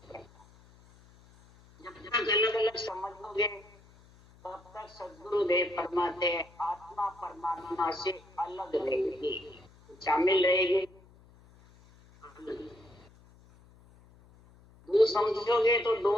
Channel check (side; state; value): left; noise; hum, 26 dB below the sound